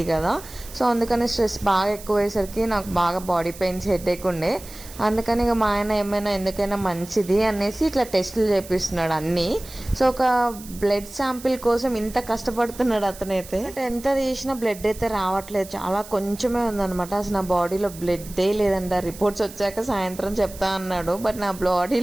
కదా. సో అందుకని స్ట్రెస్ బాగా ఎక్కువయ్యేసరికి నాకు బాగా బాడీ పెయిన్స్ హెడేక్ ఉండే. అందుకని ఇక మా ఆయన ఏమైనా ఎందుకైనా మంచిది అనేసి ఇట్లా టెస్టులు చేపిస్తున్నాడు అన్నీ. సో ఒక బ్లడ్ శాంపిల్ కోసం ఇంత కష్టపడుతున్నాడు అతనైతే. ఎంత తీసినా బ్లడ్ అయితే రావట్లేదు, చాలా కొంచెమే ఉందన్నమాట. అసలు నా బాడీలో బ్లడ్డే లేదంట. రిపోర్ట్స్ వచ్చాక సాయంత్రం చెప్తా అన్నాడు. బట్ నా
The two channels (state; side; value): noise; right; hiss, 17 dB below the sound